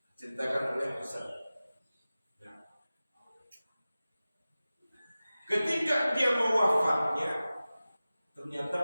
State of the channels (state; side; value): inverted; both; correlation -0.96